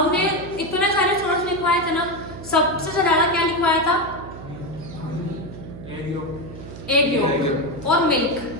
इतने सारे सोर्स लिखवाए थे ना, सबसे ज्यादा क्या लिखवाया था? एग योक और मिल्क,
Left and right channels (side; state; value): right; noise; hum, 13 dB below the sound